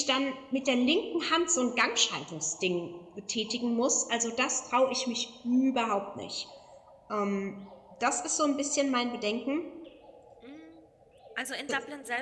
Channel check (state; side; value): identical; both; correlation 1.00